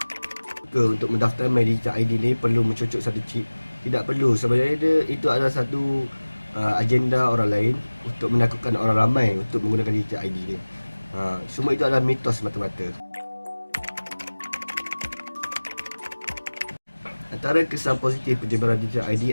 Untuk mendaftar My Digital ID ni perlu mencucuk satu chip. Tidak perlu, sebenarnya itu adalah satu agenda orang lain untuk menakutkan orang ramai untuk menggunakan digital ID ni. Semua itu adalah mitos semata-mata. Antara kesan positif penyebaran digital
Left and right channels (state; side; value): inverted; both; correlation -1.00